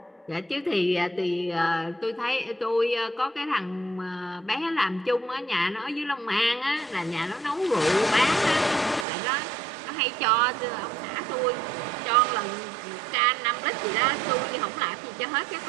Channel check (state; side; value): drops out; left; at 9.1 s